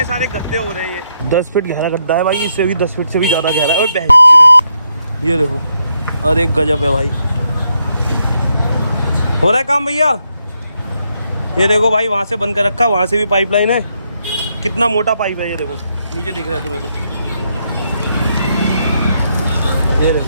सारे गड्ढे हो रहे हैं। 10 फीट गहरा गड्ढा है भाई, इससे भी 10 फीट से भी ज़्यादा गहरा है। और बहन ये देखो, अरे गजब है भाई। हो रहा है काम भैया। ये देखो भाई, वहाँ से बंद कर रखा, वहाँ से भी पाइपलाइन है। कितना मोटा पाइप है ये देखो, नीचे दिख रहा है तुम्हें तो। ये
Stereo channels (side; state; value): both; inverted; correlation -0.79